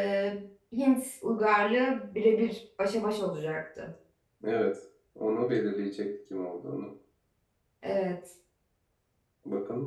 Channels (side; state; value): both; identical; correlation 1.00